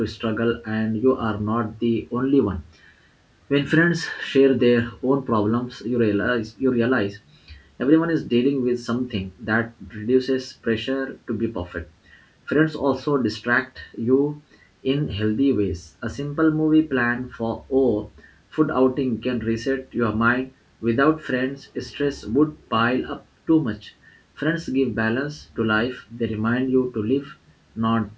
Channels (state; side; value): identical; both; correlation 1.00